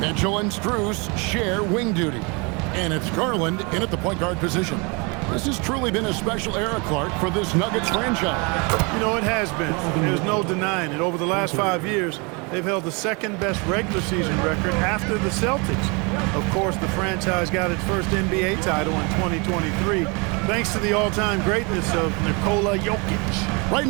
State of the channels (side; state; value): left; quieter; 30.3 dB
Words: and Strus share wing duty. And it's Garland in at the point guard position. This has truly been a special era, Clark, for this Nuggets franchise. You know, it has been. There's no denying it. Over the last 5 years, they've held the second-best regular season record after the Celtics. Of course, the franchise got its first NBA title in 2023, thanks to the all-time greatness of Nikola Jokic. Right